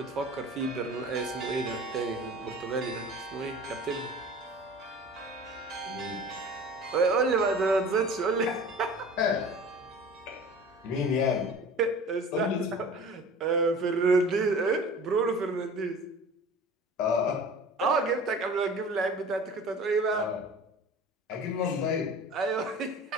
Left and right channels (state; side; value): normal; both; correlation 0.41